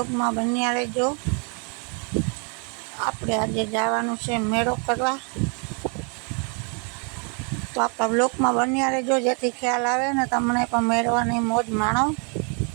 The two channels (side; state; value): left; quieter; 37.3 dB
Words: में बन्या रहेजो। आपणे आजे जवानुं छे मेळो करवा। तो आपड़ा ब्लॉग में बन्या रहेजो जेथी ख्याल आवे ने तमने पण मेळवानी मौज माणो।